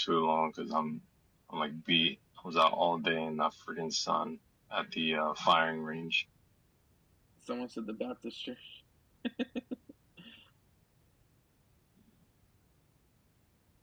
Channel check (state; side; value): identical; both; correlation 1.00